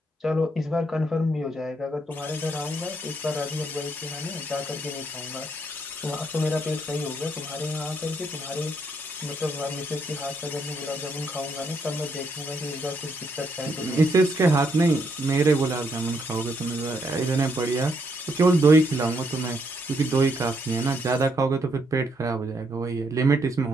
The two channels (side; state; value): both; normal; correlation 0.75